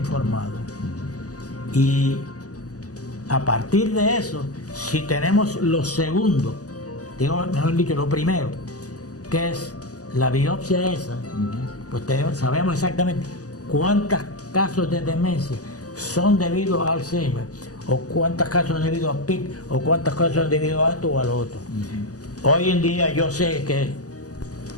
Y a partir de eso, si tenemos lo segundo, mejor dicho, lo primero, que es la biopsia esa, pues sabemos exactamente cuántos casos de demencia son debido a Alzheimer, o cuántos casos son debido a PIC, o cuántos casos son debido a esto o a lo otro. Hoy en día yo sé que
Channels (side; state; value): right; late; 0.67 ms